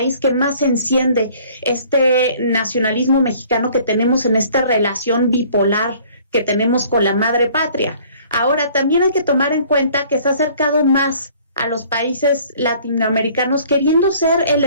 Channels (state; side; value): inverted; both; correlation -0.54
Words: que más enciende este nacionalismo mexicano que tenemos en esta relación bipolar que tenemos con la madre patria. Ahora, también hay que tomar en cuenta que se ha acercado más a los países latinoamericanos, queriendo ser el